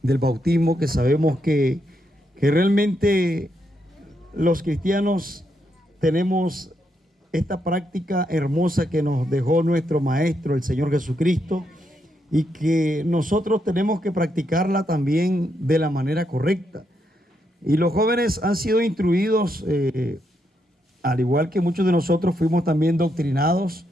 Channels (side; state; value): both; normal; correlation 0.80